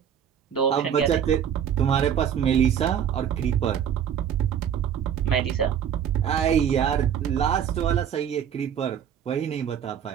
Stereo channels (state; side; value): quieter; left; 8.8 dB